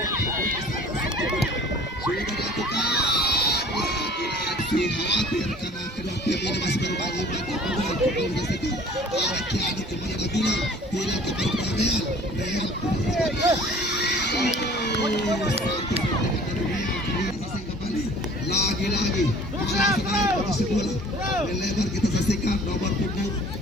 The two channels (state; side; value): normal; both; correlation 0.49